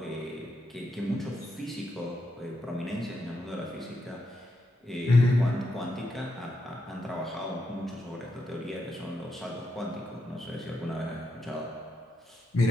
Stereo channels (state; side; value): normal; both; correlation 0.82